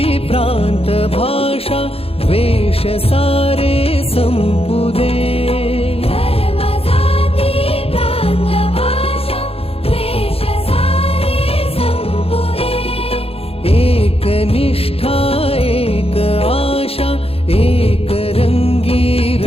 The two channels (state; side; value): late; right; 0.28 ms